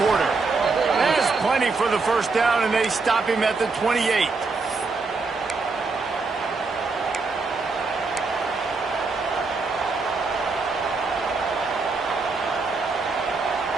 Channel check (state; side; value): quieter; left; 4.1 dB